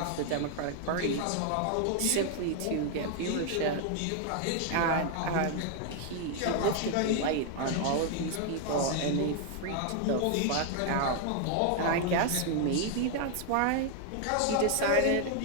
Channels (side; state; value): both; different; correlation 0.00